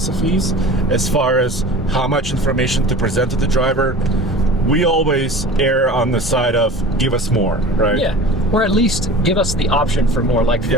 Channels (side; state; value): both; normal; correlation 0.39